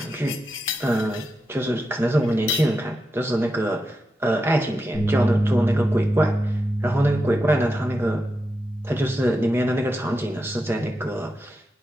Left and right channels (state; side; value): normal; both; correlation 0.88